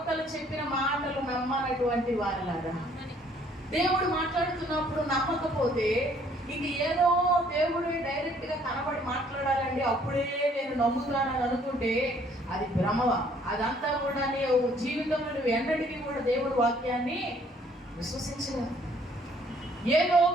చెప్పిన మాటలు నమ్మనటువంటి వారిలాగా. దేవుడు మాట్లాడుతున్నప్పుడు నమ్మకపోతే ఇంక ఏదో దేవుడు డైరెక్ట్గా కనబడి మాట్లాడాలండి అప్పుడే నేను నమ్ముతానని అనుకుంటే అది భ్రమ. అదంతా కూడా జీవితంలో నువ్వు ఎన్నటికీ కూడా దేవుడి వాక్యాన్ని విశ్వసించలేదు. ఏదో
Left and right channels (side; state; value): both; normal; correlation 0.61